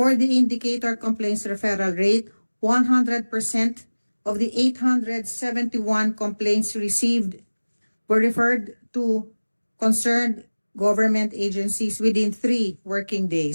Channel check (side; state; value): both; inverted; correlation -1.00